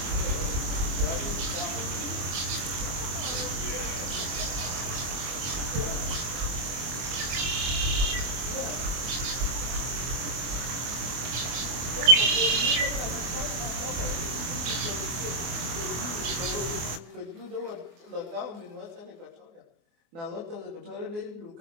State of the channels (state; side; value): late; left; 24 ms